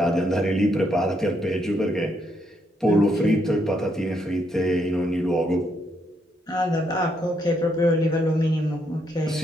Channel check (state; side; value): normal; both; correlation 0.76